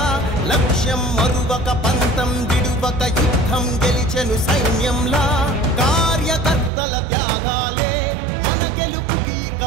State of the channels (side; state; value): left; drops out; at 6.7 s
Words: లక్ష్యం మరువక పంతం విడువక యుద్ధం గెలిచెను సైన్యంలా. కార్యకర్తల త్యాగాలే మన గెలుపుకి